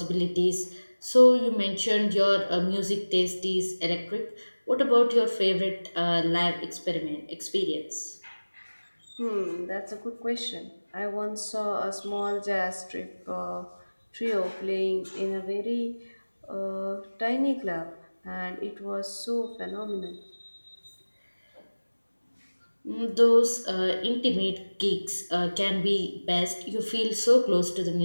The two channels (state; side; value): inverted; both; correlation -1.00